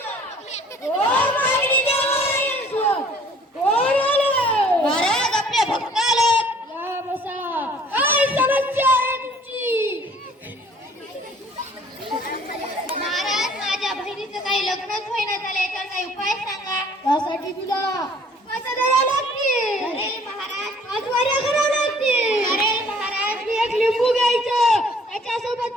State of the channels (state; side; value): normal; both; correlation 0.55